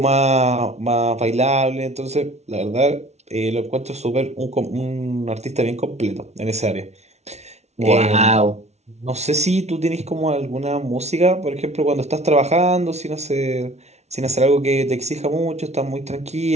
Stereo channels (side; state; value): left; late; 0.32 ms